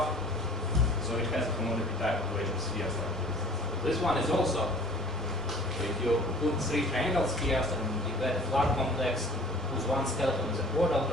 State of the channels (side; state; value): both; normal; correlation 0.48